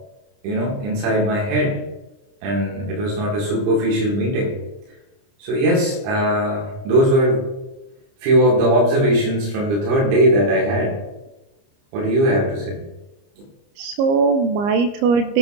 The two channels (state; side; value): late; left; 30 ms